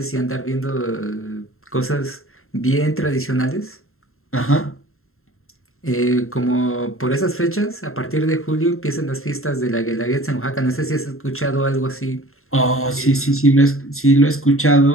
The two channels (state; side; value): late; right; 0.62 ms